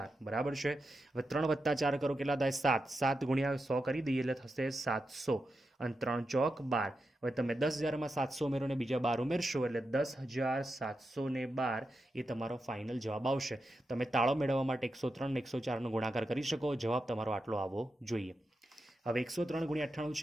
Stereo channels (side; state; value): both; normal; correlation 0.88